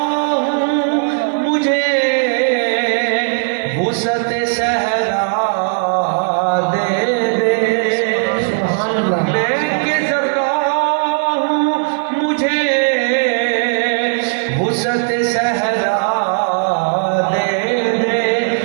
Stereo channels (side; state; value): left; silent; 58 dB below the other